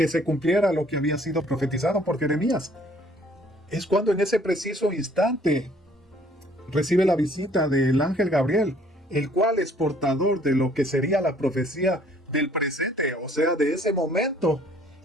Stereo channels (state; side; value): normal; both; correlation 0.59